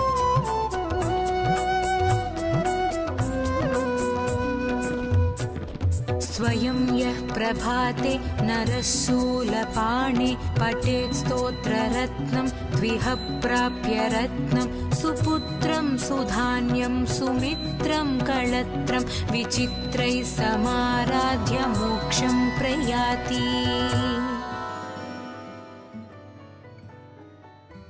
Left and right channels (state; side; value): identical; both; correlation 1.00